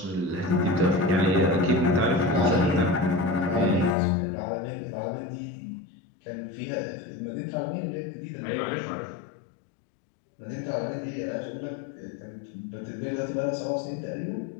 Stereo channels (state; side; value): drops out; right; at 4.0 s